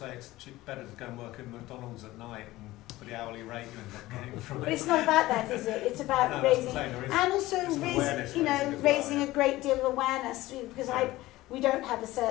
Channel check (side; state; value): right; quieter; 17.7 dB